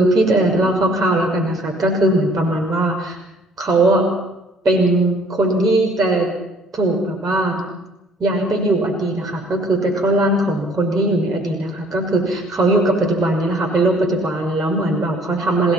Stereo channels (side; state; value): both; normal; correlation 0.58